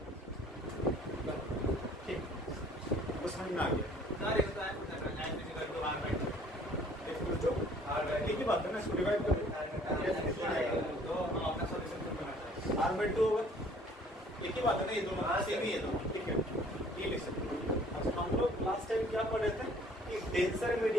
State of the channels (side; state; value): both; normal; correlation 0.56